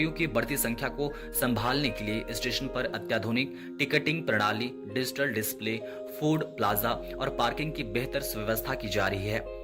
की बढ़ती संख्या को संभालने के लिए स्टेशन पर अत्याधुनिक टिकटिंग प्रणाली, डिजिटल डिस्प्ले, फूड प्लाजा और पार्किंग की बेहतर व्यवस्था की जा रही है।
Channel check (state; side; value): identical; both; correlation 1.00